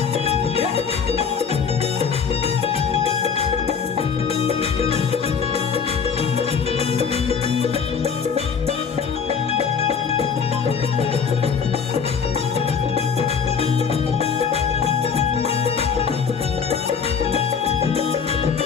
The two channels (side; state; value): right; quieter; 6.2 dB